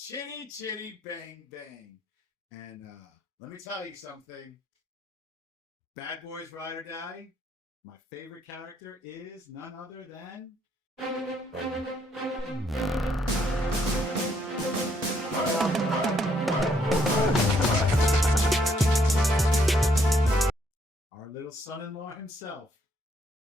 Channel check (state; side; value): normal; both; correlation 0.71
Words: Chitty Chitty Bang Bang. And let me tell you something. Bad Boys Ride or Die. My favorite character is none other than our little son-in-law himself.